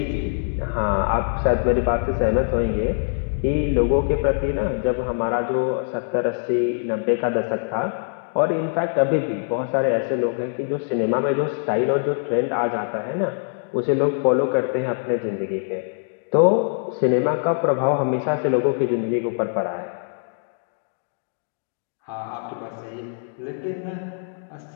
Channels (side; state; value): right; silent; digital silence